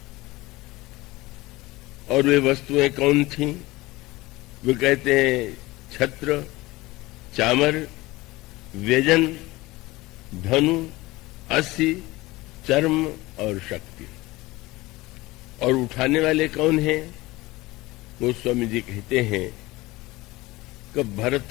और वे वस्तुएं कौन थीं? वे कहते हैं छत्र, चामर, व्यजन, धनु, अस्सी, चर्म और शक्ति। और उठाने वाले कौन हैं? गोस्वामी जी कहते हैं कि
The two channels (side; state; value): right; quieter; 20.2 dB